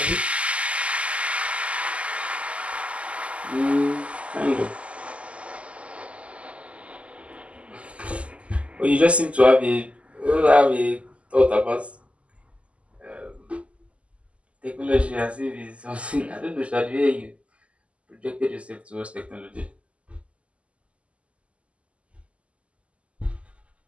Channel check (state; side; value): late; left; 0.060 ms